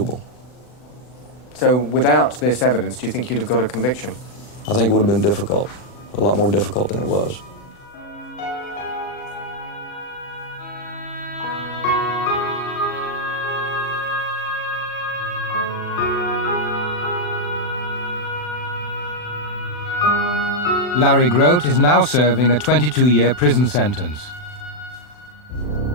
So without this evidence, do you think you'd have got a conviction? I think it would have been difficult, a lot more difficult than it was. Larry Grote is now serving a 22-year prison sentence.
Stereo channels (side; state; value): right; late; 40 ms